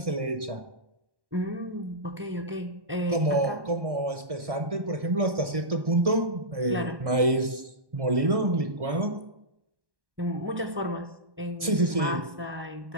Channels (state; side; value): late; left; 1.6 ms